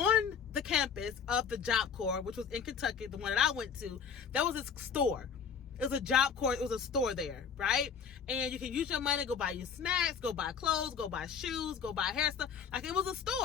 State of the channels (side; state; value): right; quieter; 6.8 dB